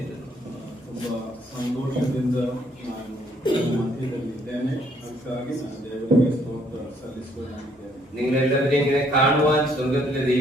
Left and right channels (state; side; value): normal; both; correlation 0.66